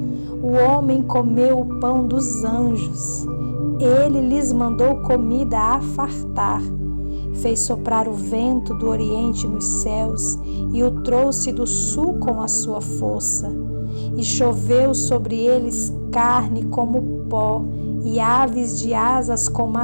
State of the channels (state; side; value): inverted; both; correlation -1.00